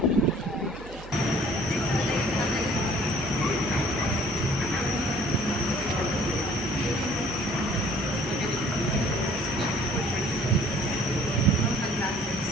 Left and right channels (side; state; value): right; noise; hum, 16 dB below the sound